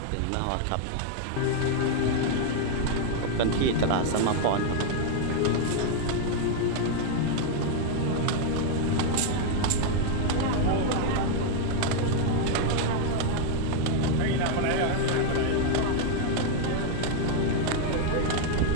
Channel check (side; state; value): both; different; correlation 0.00